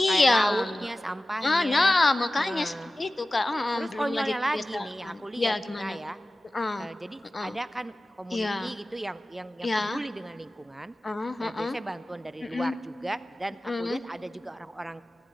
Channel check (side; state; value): both; normal; correlation 0.96